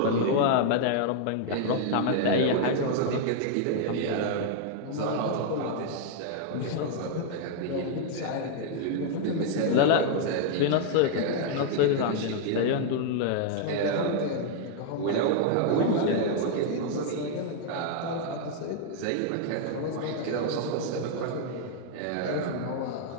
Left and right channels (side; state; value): both; different; correlation 0.00